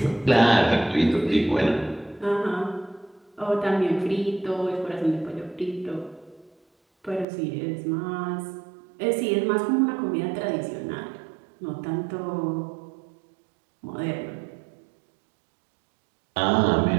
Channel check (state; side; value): drops out; left; at 7.2 s